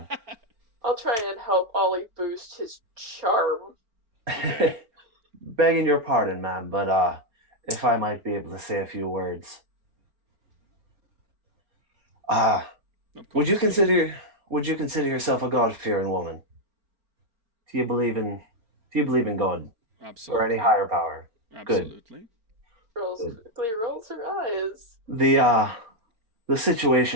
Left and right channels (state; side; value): late; left; 4.5 ms